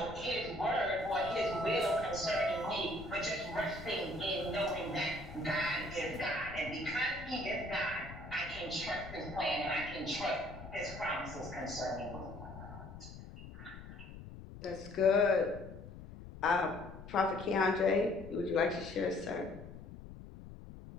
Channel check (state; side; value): noise; left; rumble, 13 dB below the sound